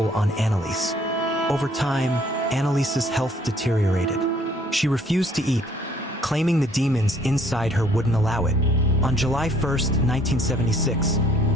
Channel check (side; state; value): both; normal; correlation 0.61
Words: on Anneliese. Over time, Anneliese's health deteriorated. She refused to eat, claiming the demons inside her wouldn't allow it. On July 1, 1976,